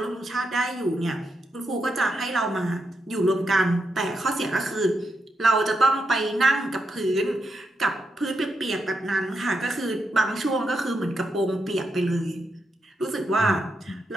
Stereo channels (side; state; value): both; normal; correlation 0.83